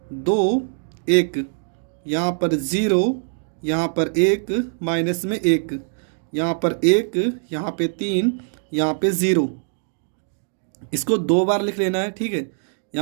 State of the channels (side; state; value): left; silent; digital silence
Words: 2 1, यहाँ पर 0, यहाँ पर 1 माइनस में 1, यहाँ पर 1, यहाँ पे 3, यहाँ पे 0, इसको 2 बार लिख लेना है। ठीक है,